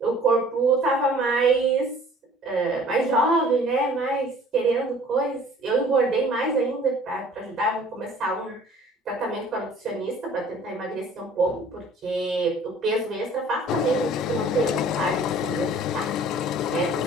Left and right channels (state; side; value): normal; both; correlation 0.51